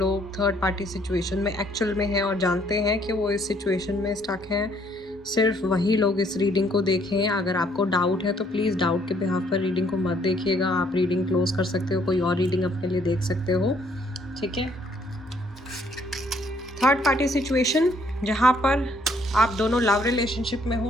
थर्ड पार्टी सिचुएशन में एक्चुअल में हैं और जानते हैं कि वो इस सिचुएशन में स्टक हैं, सिर्फ वही लोग इस रीडिंग को देखें। अगर आपको डाउट है तो प्लीज़ डाउट के बिहाफ पर रीडिंग को मत देखिएगा। आप रीडिंग क्लोज कर सकते हो, कोई और रीडिंग अपने लिए देख सकते हो, ठीक है। थर्ड पार्टी सिचुएशन जहाँ पर आप दोनों लव रिलेशनशिप में हो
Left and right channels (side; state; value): both; normal; correlation 0.66